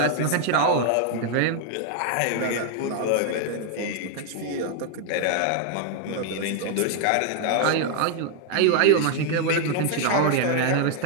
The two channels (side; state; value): both; different; correlation 0.00